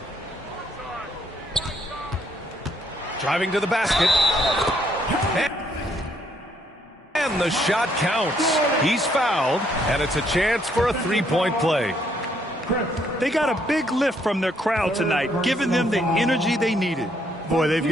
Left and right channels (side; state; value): both; normal; correlation 0.70